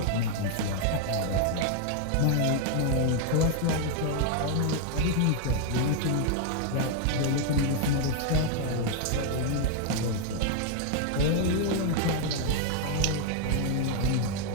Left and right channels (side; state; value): both; different; correlation 0.00